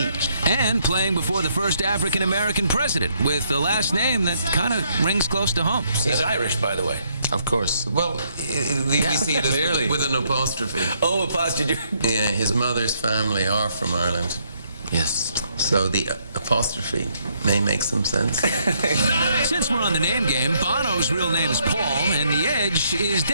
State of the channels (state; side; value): inverted; both; correlation -0.71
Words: And playing before the first African-American president, with a last name that kind of rings close to home. He's Irish, by the way. Of course. Well, we see it as with an apostrophe. Oh, apostrophe. Yeah, his mother's family are from Ireland. Yes. So the apostrophe may make some sense. Since we're on the name game, Bono's real name is Paul, and The Edge is